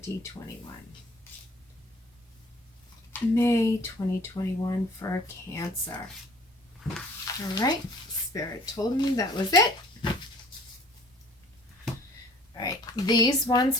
May 2021 for Cancer. All right, Spirit told me that was it. All right, these ones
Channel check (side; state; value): both; normal; correlation 0.53